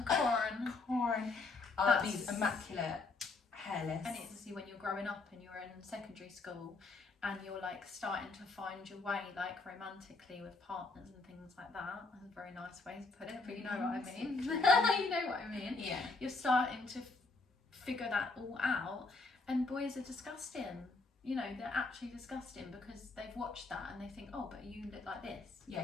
corn. Corn. These immaculate hairless. And it's when you're growing up and you're in secondary school and you're like starting to find your way, like romantically with partners and things like that. That's a very nice way to put it, but you know what I mean. You know what I mean. Yeah. You're starting to figure that all out, and boys are disgusting. You know, they're actually disgusting because they've watched that and they think, oh, but you look like this. Yeah,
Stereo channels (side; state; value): right; quieter; 3.7 dB